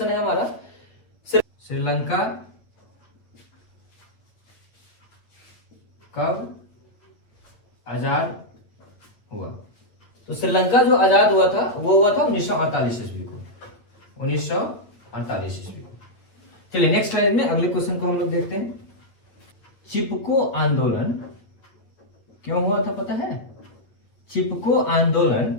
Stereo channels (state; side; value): late; right; 8.9 ms